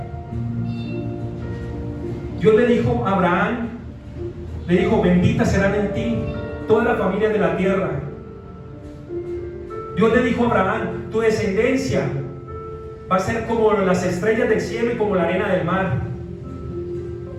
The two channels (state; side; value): identical; both; correlation 1.00